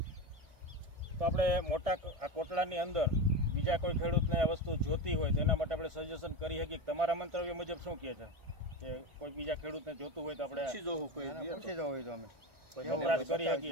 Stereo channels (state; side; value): late; left; 1.6 ms